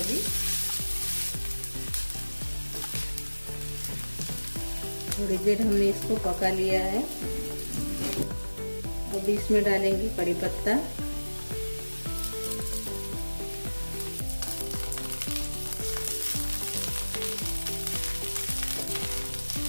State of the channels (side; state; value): both; inverted; correlation -1.00